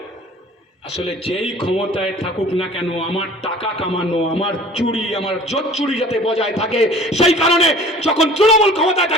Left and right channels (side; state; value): both; normal; correlation 0.47